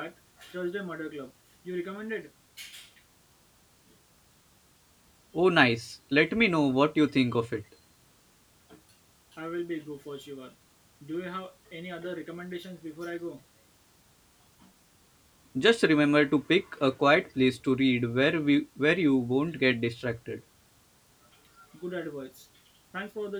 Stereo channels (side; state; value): both; identical; correlation 1.00